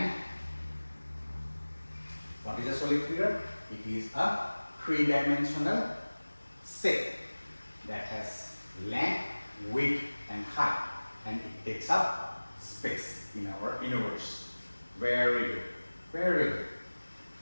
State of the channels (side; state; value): both; inverted; correlation -1.00